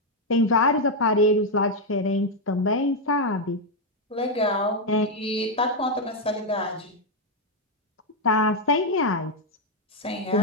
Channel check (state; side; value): normal; both; correlation 0.02